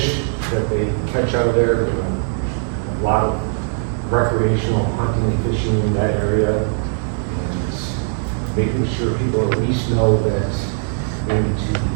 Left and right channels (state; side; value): silent; left; 63 dB below the other